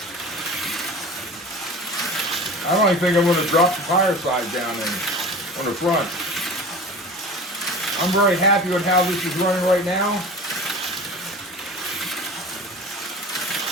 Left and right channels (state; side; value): normal; both; correlation 0.37